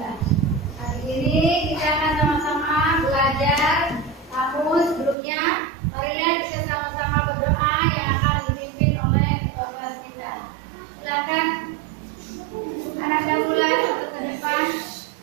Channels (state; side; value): drops out; left; at 5.2 s